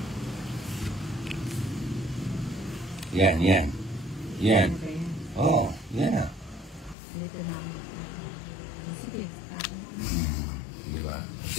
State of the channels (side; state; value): right; drops out; at 7.0 s